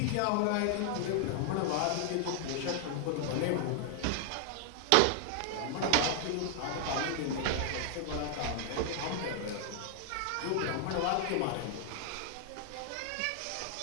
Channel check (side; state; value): both; different; correlation 0.00